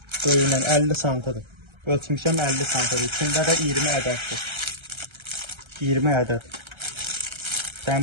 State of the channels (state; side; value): late; left; 1.3 ms